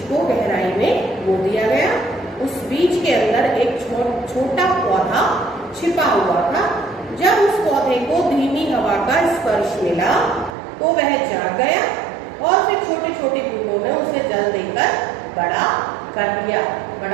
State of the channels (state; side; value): drops out; left; at 10.6 s